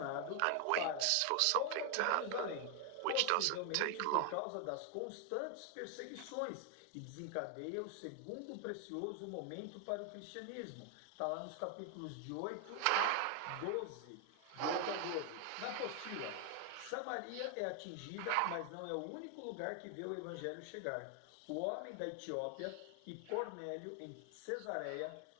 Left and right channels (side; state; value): both; different; correlation 0.01